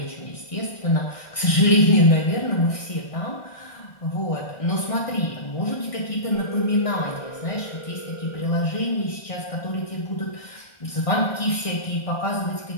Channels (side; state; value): right; late; 1.6 ms